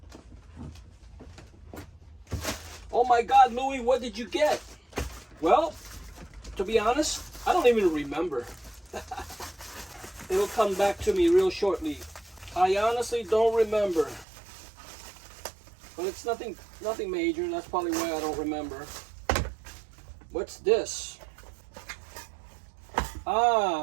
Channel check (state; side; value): drops out; left; at 14.2 s